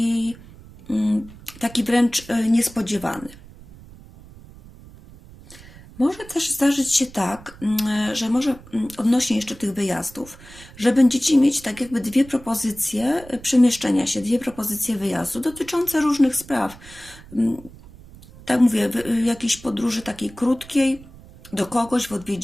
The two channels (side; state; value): right; noise; rumble, 20 dB below the sound